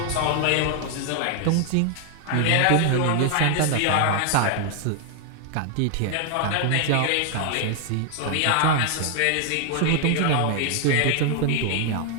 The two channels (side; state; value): both; different; correlation 0.00